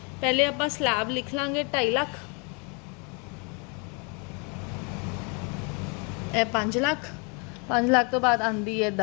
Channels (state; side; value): quieter; right; 34.1 dB